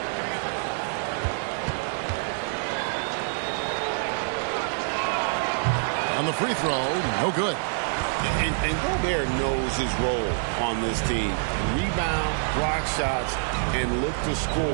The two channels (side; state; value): left; silent; digital silence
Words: On the free throw, no good. And Gobert knows his role on this team. Rebound, block shots, and look to